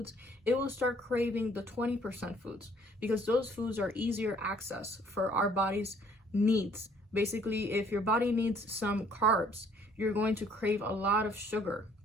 it will start craving the 20% foods, because those foods are easier access for our body's needs. Basically, if your body needs some carbs, you're going to crave a lot of sugar,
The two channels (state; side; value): normal; both; correlation 0.60